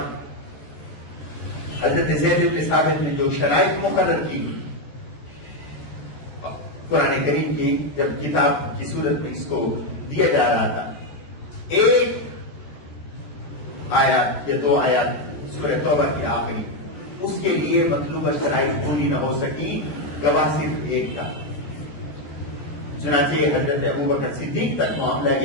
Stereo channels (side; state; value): right; late; 14 ms